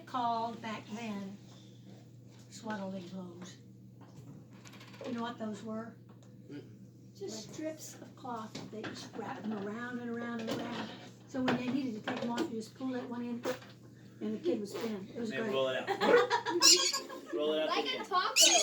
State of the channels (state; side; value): identical; both; correlation 1.00